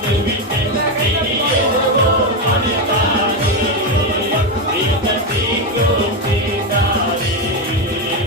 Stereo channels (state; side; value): normal; both; correlation 0.10